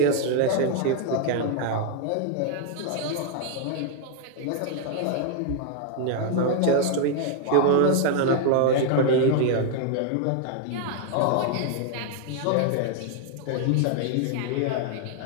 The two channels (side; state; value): both; different; correlation 0.00